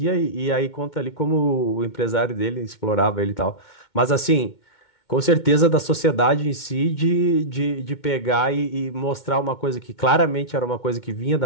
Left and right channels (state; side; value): late; right; 2.2 ms